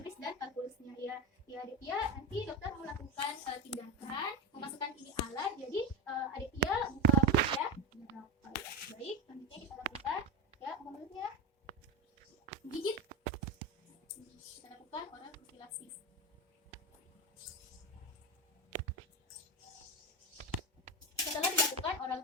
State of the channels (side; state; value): both; normal; correlation 0.14